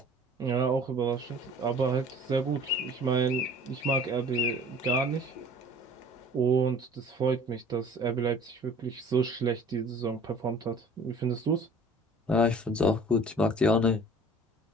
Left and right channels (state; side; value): normal; both; correlation 0.48